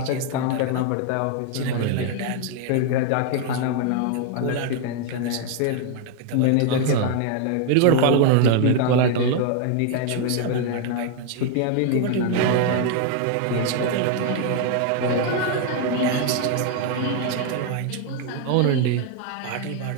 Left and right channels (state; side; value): different; both; correlation 0.00